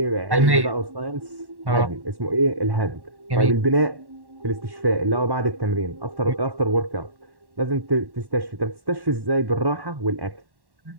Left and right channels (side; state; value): left; late; 1.1 ms